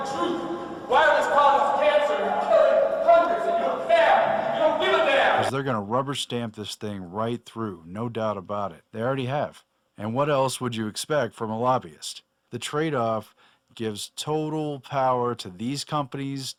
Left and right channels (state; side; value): identical; both; correlation 1.00